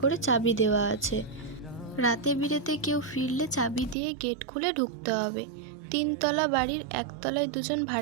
করে চাবি দেওয়া আছে। রাতে বিরেতে কেউ ফিরলে চাবি দিয়ে গেট খুলে ঢুকতে হবে। 3তলা বাড়ির 1তলায় 2জন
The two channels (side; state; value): left; drops out; at 4.0 s